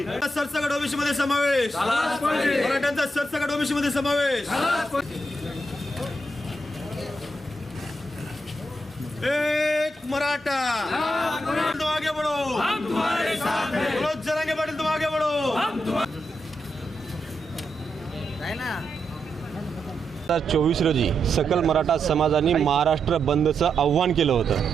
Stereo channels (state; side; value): normal; both; correlation 0.84